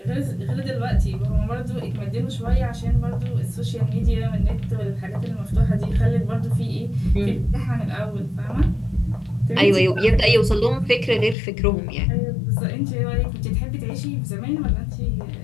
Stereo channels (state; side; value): drops out; right; at 11.4 s